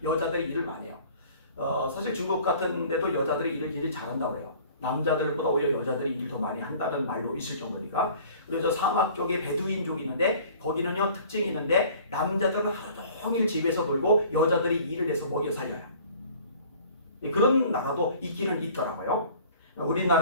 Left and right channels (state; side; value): inverted; both; correlation -0.49